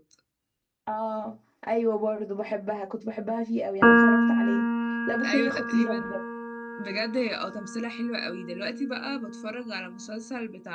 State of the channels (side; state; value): both; identical; correlation 1.00